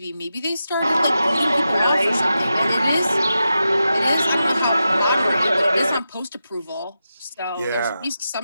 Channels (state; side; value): inverted; both; correlation -0.90